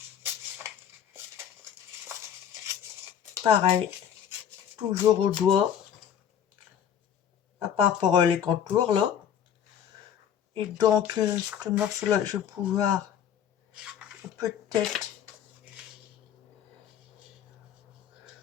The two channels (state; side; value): quieter; right; 9.1 dB